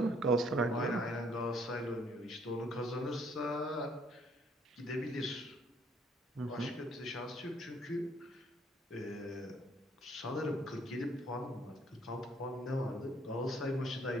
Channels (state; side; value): normal; both; correlation 0.64